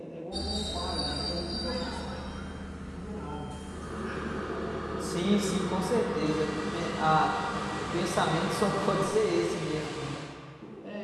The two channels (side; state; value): both; identical; correlation 1.00